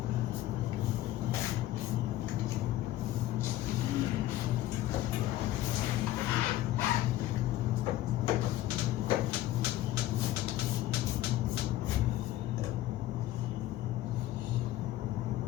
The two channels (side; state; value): right; quieter; 14.6 dB